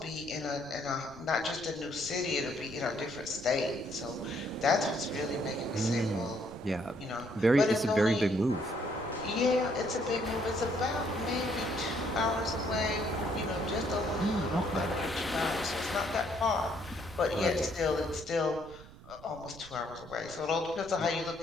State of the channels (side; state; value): right; noise; rumble, 18 dB below the sound